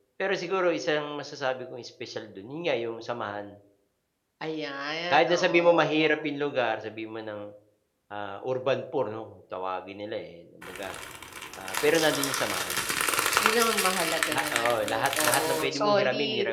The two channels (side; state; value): both; identical; correlation 1.00